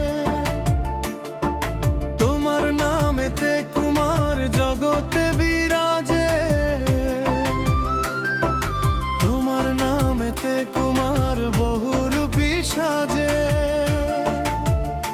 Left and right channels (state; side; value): identical; both; correlation 1.00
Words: তোমার নামেতে কুমার জগতে বিরাজে, তোমার নামেতে কুমার বহুরূপী সাজে।